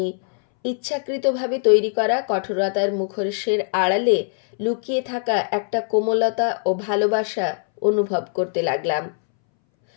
ইচ্ছাকৃতভাবে তৈরি করা কঠোরতার মুখোশের আড়ালে লুকিয়ে থাকা একটা কোমলতা ও ভালোবাসা অনুভব করতে লাগলাম।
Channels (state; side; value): silent; right; 63 dB below the other